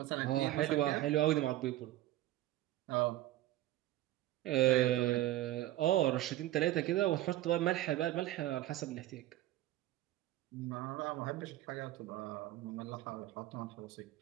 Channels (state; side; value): quieter; left; 15.1 dB